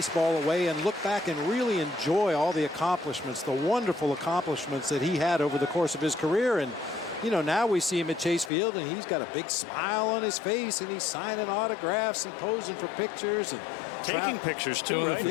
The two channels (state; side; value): drops out; right; at 8.5 s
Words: away and look back and really enjoy all the accomplishments, the wonderful accomplishments that he had over the course of his career. And you know, now we see him at Chase Field, and he's got a big smile on his face, and he's signing autographs and posing for pictures and taking pictures too, right?